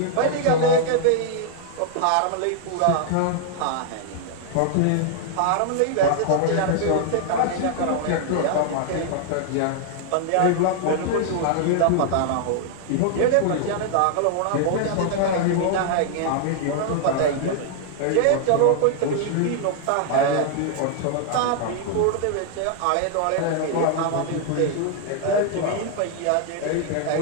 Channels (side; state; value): both; different; correlation 0.00